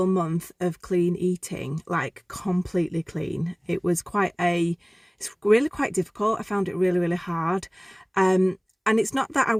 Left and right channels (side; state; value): both; identical; correlation 1.00